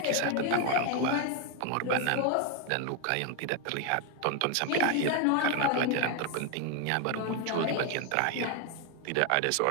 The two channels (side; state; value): both; different; correlation 0.01